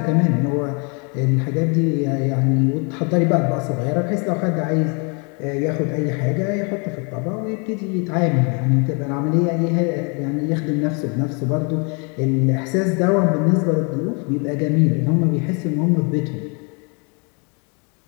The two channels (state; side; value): quieter; right; 34.7 dB